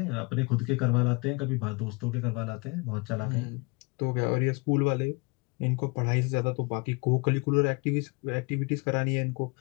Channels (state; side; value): quieter; right; 28.4 dB